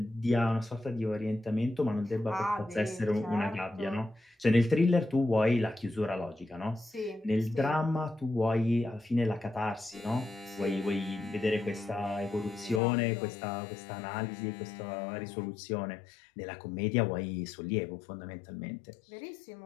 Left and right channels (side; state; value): right; drops out; at 12.8 s